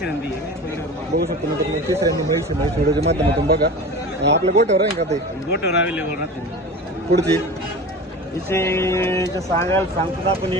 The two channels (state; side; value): normal; both; correlation 0.34